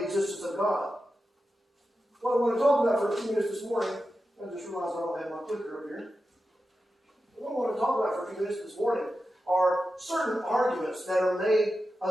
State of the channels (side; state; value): both; normal; correlation 0.91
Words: existence of God. What I want to talk about for a few minutes this morning, I just realized I don't have my clicker up here. What I want to talk about for a few minutes this morning are certain arguments that are made